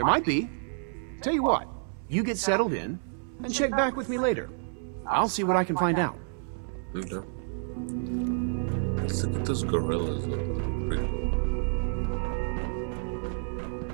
might be. Tell you what, you get settled in, and check back with me later. I'll see what I can find out. Okay. Let's look at those gorillas. Pretty cool.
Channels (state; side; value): silent; left; 57 dB below the other